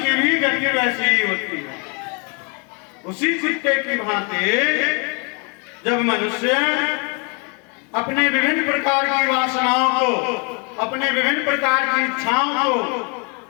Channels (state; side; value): quieter; right; 34.9 dB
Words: भी गति वैसी ही होती है। उसी कुत्ते की भांति जब मनुष्य अपने विभिन्न प्रकार की वासनाओं को, अपने विभिन्न प्रकार की इच्छाओं को